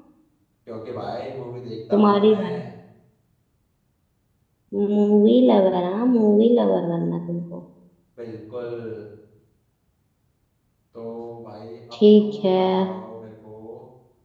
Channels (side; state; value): both; identical; correlation 1.00